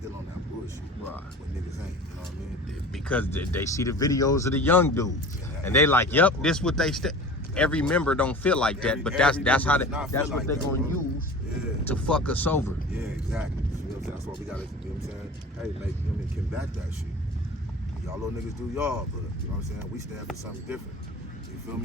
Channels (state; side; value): normal; both; correlation 0.38